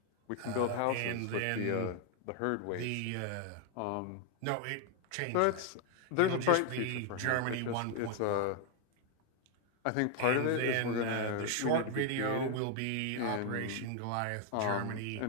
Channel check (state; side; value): different; both; correlation 0.00